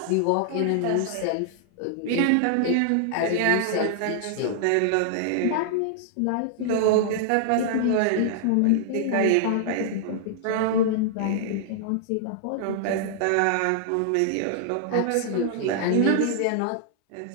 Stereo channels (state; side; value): different; both; correlation -0.01